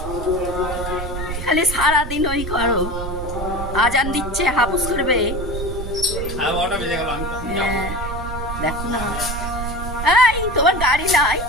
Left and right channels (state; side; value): noise; right; rumble, 6 dB below the sound